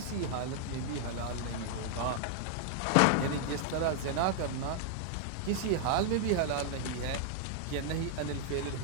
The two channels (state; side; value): different; both; correlation -0.01